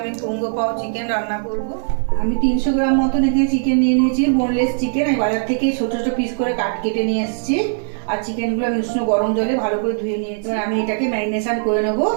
কুঙ্গো পাও চিকেন রান্না করব। আমি 300 গ্রাম মতন এখানে চিকেন নিয়ে নিয়েছি, বোনলেস চিকেন। আমি বাজার থেকে ছোট ছোট পিস করে কেটে নিয়ে এসেছি। আর চিকেনগুলো আমি উষ্ণ গরম জলে ভালো করে ধুয়ে নিয়েছি। আমি এটাকে ম্যারিনেশন করে নেব।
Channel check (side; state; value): left; silent; digital silence